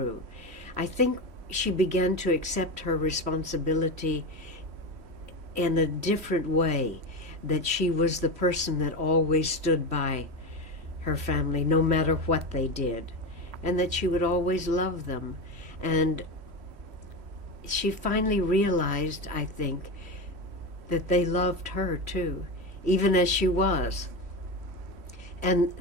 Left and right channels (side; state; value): left; late; 3.1 ms